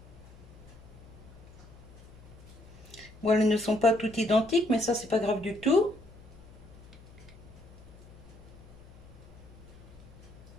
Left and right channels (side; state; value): left; noise; hum, 20 dB below the sound